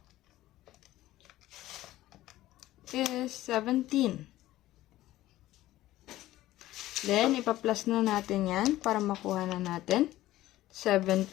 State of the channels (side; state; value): right; quieter; 15.5 dB